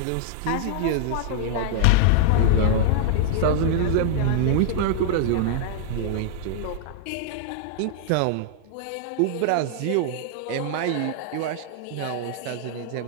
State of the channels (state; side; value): different; both; correlation -0.01